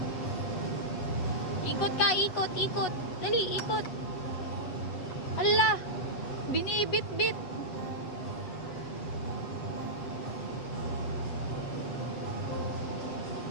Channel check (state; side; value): late; right; 7.5 ms